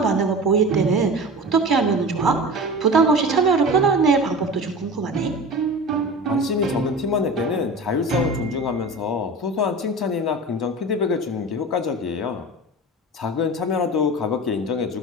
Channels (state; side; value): normal; both; correlation 0.33